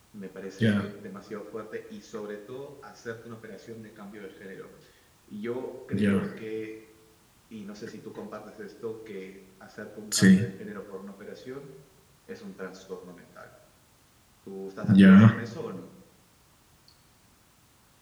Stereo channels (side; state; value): both; identical; correlation 1.00